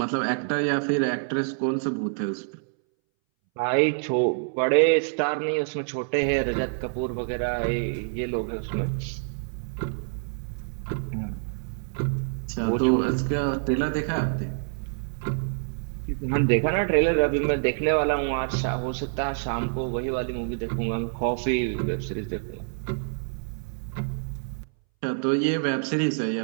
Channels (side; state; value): left; silent; 60 dB below the other